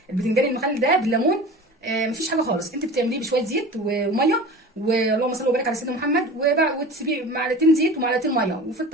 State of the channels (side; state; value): both; normal; correlation 0.36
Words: البتنجان المخلل ده بالليمون. مفيش حاجه خالص، انت بتعمليه بشويه زيت وميه، واللهم صل وبارك على سيدنا محمد، وتسيبيه معلقتين زيت ومعلقتين ميه وفي